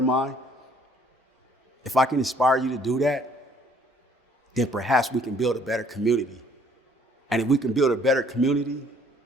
if I can inspire you to do that, then perhaps we can build a better community. And if we can build a better community,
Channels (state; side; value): normal; both; correlation 0.60